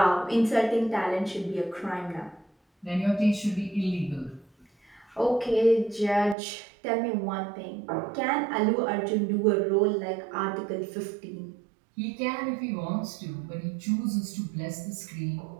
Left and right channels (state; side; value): drops out; left; at 6.4 s